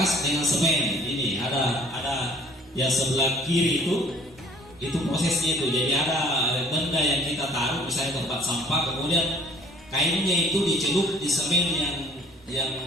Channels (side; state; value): both; normal; correlation 0.55